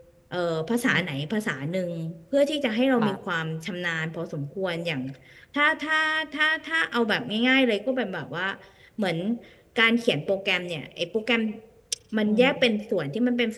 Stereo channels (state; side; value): identical; both; correlation 1.00